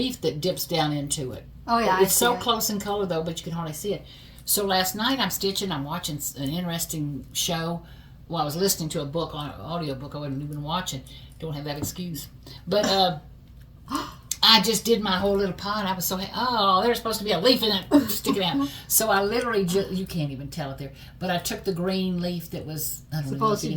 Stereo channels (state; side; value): identical; both; correlation 1.00